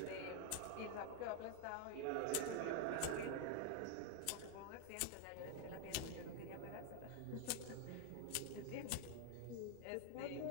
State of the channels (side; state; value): both; different; correlation 0.01